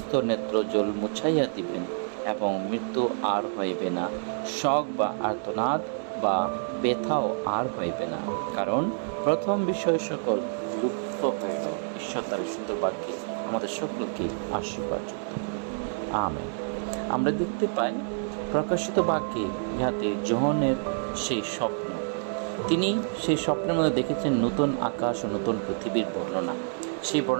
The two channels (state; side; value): silent; left; digital silence